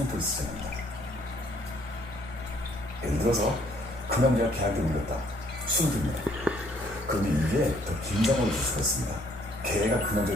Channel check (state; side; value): normal; both; correlation 0.63